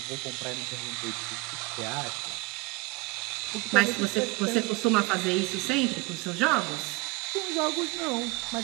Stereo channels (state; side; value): quieter; left; 24.7 dB